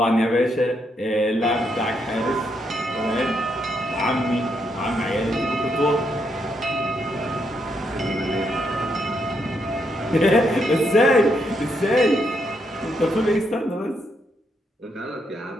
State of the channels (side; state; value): both; normal; correlation 0.78